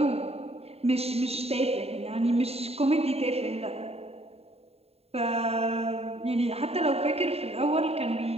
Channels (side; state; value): left; late; 0.29 ms